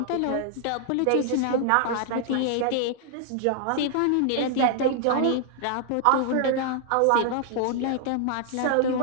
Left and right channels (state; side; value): different; both; correlation 0.00